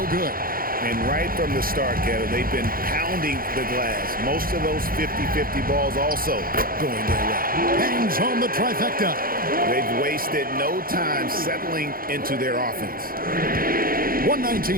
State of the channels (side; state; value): left; late; 0.42 ms